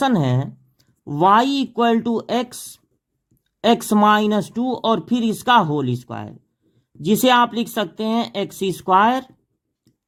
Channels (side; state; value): both; identical; correlation 1.00